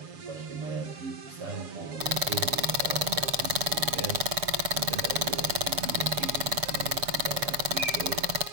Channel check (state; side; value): late; left; 7.3 ms